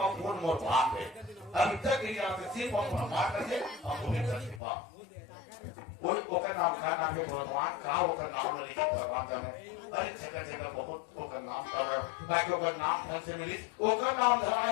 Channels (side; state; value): right; drops out; at 4.6 s